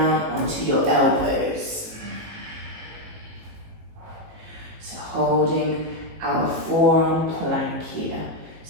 onto your elbows. So holding our forearm plank here.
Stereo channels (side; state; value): left; late; 18 ms